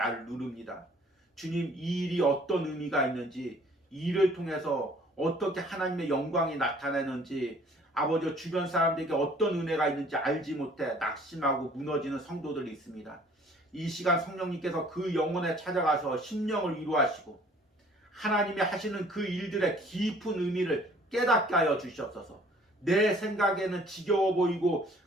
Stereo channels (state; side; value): normal; both; correlation 0.55